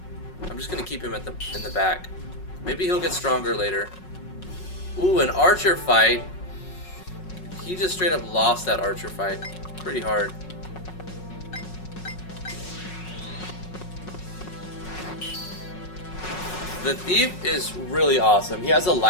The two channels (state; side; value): late; right; 5.4 ms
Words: I'm just gonna keep him in the back. Maybe he'll get stronger later. Ooh, an archer fight. He just straight up lost that archer fight. Pretty hard. The thief is really awesome. He has a